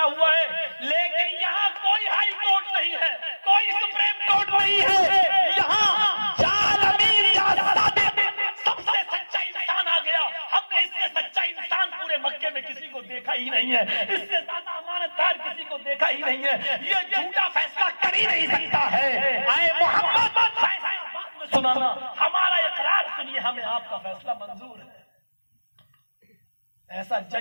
ہوا ہے، لیکن یہاں کوئی ہائی کورٹ نہیں ہے، کوئی سپریم کورٹ نہیں ہے، یہاں جال امین جا صادق، سب سے سچا انسان آ گیا، ہم نے اس سے سچا انسان پورے مکے میں کسی کو دیکھا ہی نہیں ہے، اس سے زیادہ امانت دار کسی کو دیکھا ہی نہیں ہے، یہ جھوٹا فیصلہ کر ہی نہیں سکتا ہے، اے محمد فیصلہ بعد میں سنانا، ہمارا اقرار سنیے، ہمیں آپ کا فیصلہ منظور ہے۔ ایسا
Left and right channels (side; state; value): both; inverted; correlation -1.00